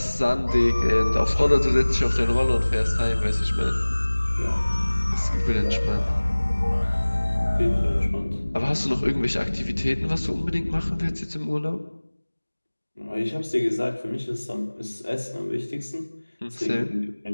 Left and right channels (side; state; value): both; inverted; correlation -1.00